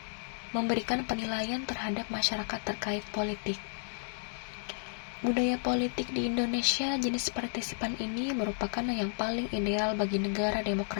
memberikan penilaian terhadap masyarakat terkait politik. Budaya politik di Indonesia jenis partisipan ini merupakan yang paling ideal bagi negara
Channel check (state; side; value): silent; right; digital silence